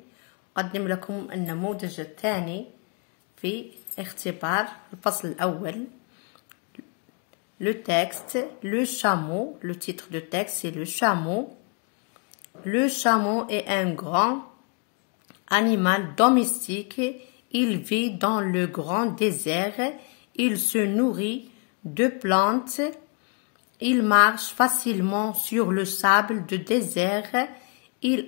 أقدم لكم النموذج الثاني في اختبار الفصل الأول. Le texte, le chameau, le titre de texte c'est le chameau. Le chameau est un grand animal domestique. Il vit dans le grand désert. Il se nourrit de plantes. Il marche facilement sur le sable du désert. Il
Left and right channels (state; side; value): quieter; right; 36.8 dB